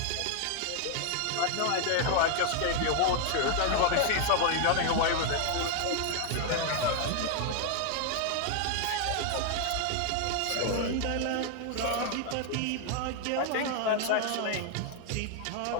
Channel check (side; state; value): both; different; correlation 0.00